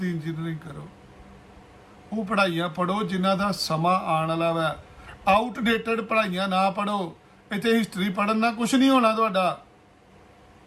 ਇੰਜੀਨੀਅਰਿੰਗ ਕਰੋ। ਉਹ ਪੜ੍ਹਾਈਆਂ ਪੜ੍ਹੋ ਜਿਨ੍ਹਾਂ ਦਾ ਸਮਾਂ ਆਉਣ ਵਾਲਾ ਵਾ। ਆਊਟਡੇਟਡ ਪੜ੍ਹਾਈਆਂ ਨਾ ਪੜ੍ਹੋ। ਇੱਥੇ ਹਿਸਟਰੀ ਪੜ੍ਹਨ ਨਾਲ ਕੁਝ ਨਹੀਂ ਹੋਣਾ ਤੁਹਾਡਾ।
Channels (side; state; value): both; identical; correlation 1.00